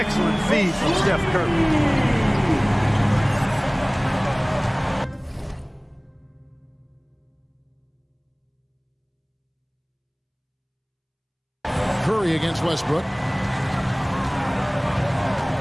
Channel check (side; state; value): both; identical; correlation 1.00